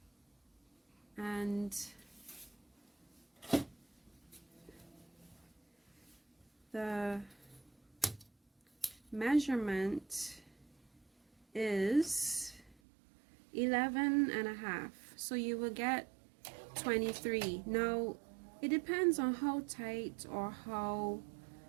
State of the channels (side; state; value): left; drops out; at 12.8 s